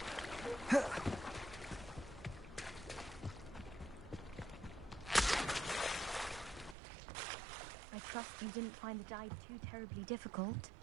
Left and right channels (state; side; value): drops out; left; at 6.8 s